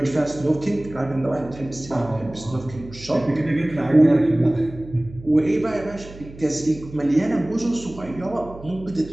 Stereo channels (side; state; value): right; noise; hum, 17 dB below the sound